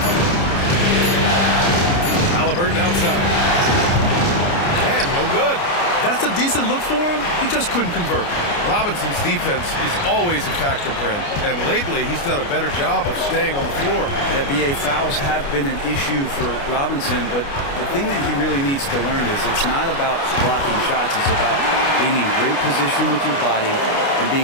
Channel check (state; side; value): late; right; 29 ms